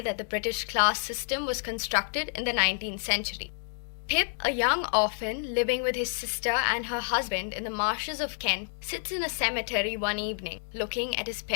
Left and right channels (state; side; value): silent; right; digital silence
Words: that the British class system was constructed in the 19th century. Pip, a young orphan living with his sister and her husband in the marshes of Kent, sits in a cemetery one evening, looking at his